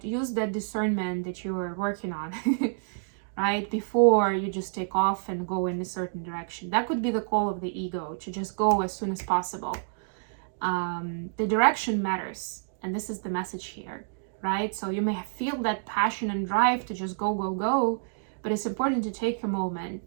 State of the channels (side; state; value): left; silent; digital silence